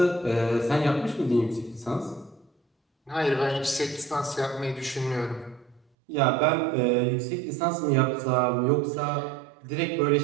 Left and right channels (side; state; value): left; drops out; at 5.8 s